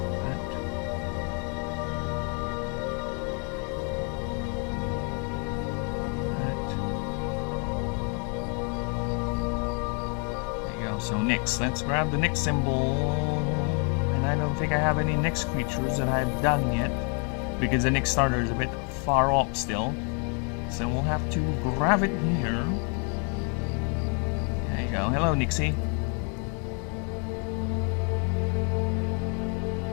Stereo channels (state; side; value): quieter; right; 37.4 dB